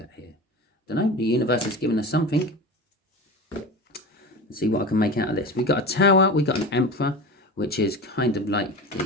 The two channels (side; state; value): both; normal; correlation 0.29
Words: here? I don't know. The universe has given us something. Let's see what I can make out of this. We've got a Tower, we've got an Emperor, which is kind of like